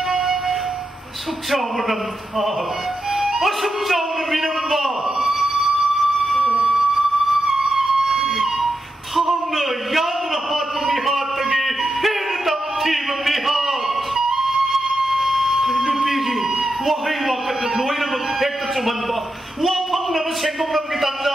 ꯑꯁꯨꯛ ꯆꯥꯎꯕ ꯅꯝꯊꯥ ꯑꯁꯨꯛ ꯆꯥꯎꯅ ꯃꯤꯅꯝꯕ ꯊꯥꯡꯅ ꯌꯥꯗꯨꯅ ꯍꯥꯠꯄ ꯃꯤꯍꯥꯠꯇꯒꯤ ꯍꯦꯟꯅ ꯇꯝꯊꯤꯕ ꯃꯤꯍꯥꯠ ꯅꯨꯄꯤꯒꯤ ꯋꯥꯍꯩ ꯋꯥꯀꯠꯅ ꯂꯣꯏꯅꯃꯛ ꯍꯦꯛꯇ ꯆꯨꯝꯍꯟꯕ ꯋꯥꯐꯪꯅꯕ ꯁꯦꯡꯗꯣꯛꯅꯕꯒꯤ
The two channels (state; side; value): normal; both; correlation 0.87